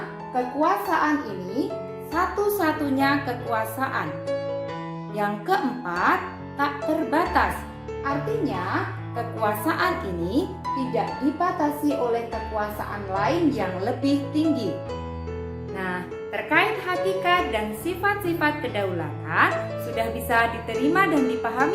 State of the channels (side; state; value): both; identical; correlation 1.00